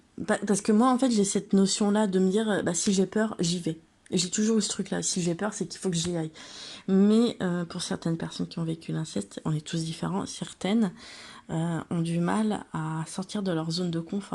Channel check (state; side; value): identical; both; correlation 1.00